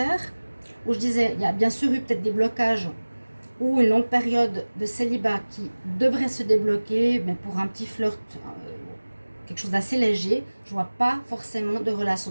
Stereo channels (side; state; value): both; inverted; correlation -1.00